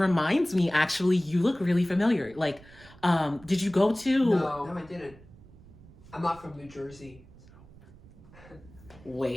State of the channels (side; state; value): right; noise; rumble, 22 dB below the sound